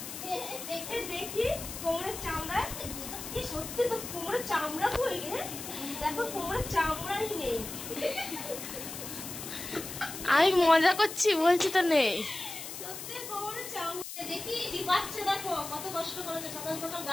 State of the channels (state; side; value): noise; left; hiss, 9 dB below the sound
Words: দেখি কোমরের চামড়া, কি সত্যি তো কোমরের চামড়া কই রে? দেখো কোমরের চামড়াই নেই। আমি মজা করছি, বলছি তো নেই। সত্যি কোমরের চামড়া দেখি টিপাচ্ছে। দেখো কত কষ্ট করেছে, সকাল সকাল